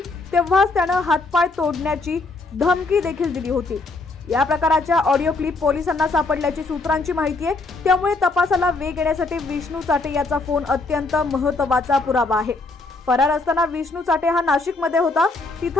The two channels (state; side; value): quieter; right; 3.3 dB